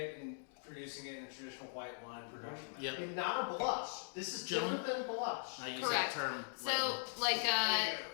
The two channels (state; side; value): silent; right; digital silence